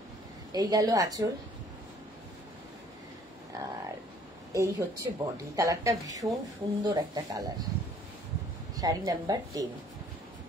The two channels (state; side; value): normal; both; correlation 0.58